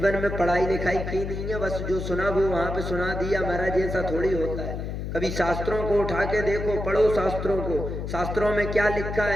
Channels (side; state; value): left; noise; hum, 5 dB below the sound